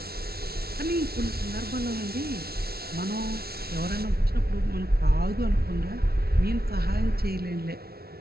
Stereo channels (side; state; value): left; late; 0.45 ms